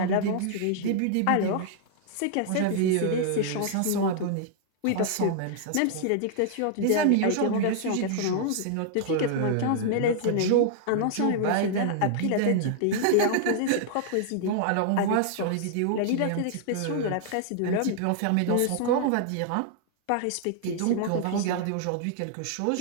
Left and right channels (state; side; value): different; both; correlation -0.01